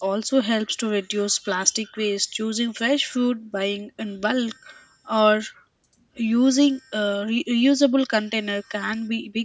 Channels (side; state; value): both; identical; correlation 1.00